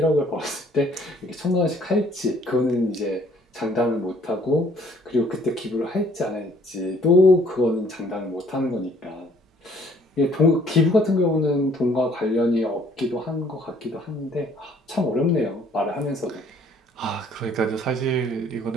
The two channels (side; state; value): both; normal; correlation 0.60